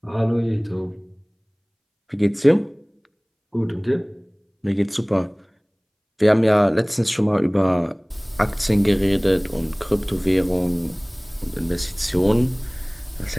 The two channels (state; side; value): identical; both; correlation 1.00